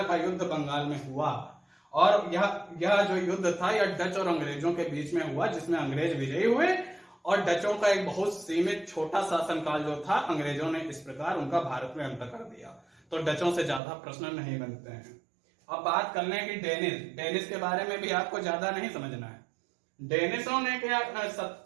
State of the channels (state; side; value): drops out; left; at 13.8 s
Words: का युद्ध बंगाल में हुआ, और यह जो युद्ध था यह डच और अंग्रेजों के बीच में हुआ, जिसमें अंग्रेज विजयी हुए और डचों का एक बहुत सीमित छोटा शासनकाल जो था, अंग्रेजों ने इस प्रकार उनका भारत में अंत कर दिया। तो डचों से ज्यादा प्रश्न नहीं बनते हैं। अब बात कर लें कि डेनिस के बारे में भी आपको ज्यादा नहीं समझना है। डेनिसों ने क्या